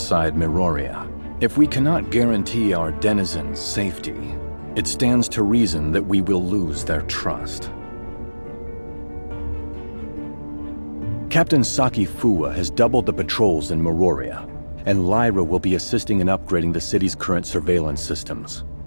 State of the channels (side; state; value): both; inverted; correlation -1.00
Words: Miroria. If we cannot guarantee our denizens' safety, it stands to reason that we will lose their trust. Captain Saki Fuwa has doubled the patrols in Miroria, and Lyra will be assisting in upgrading the city's current surveillance systems.